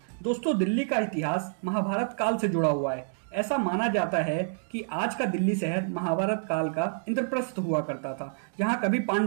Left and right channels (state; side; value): silent; left; digital silence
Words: दोस्तों, दिल्ली का इतिहास महाभारत काल से जुड़ा हुआ है। ऐसा माना जाता है कि आज का दिल्ली शहर महाभारत काल का इंद्रप्रस्थ हुआ करता था, जहां कभी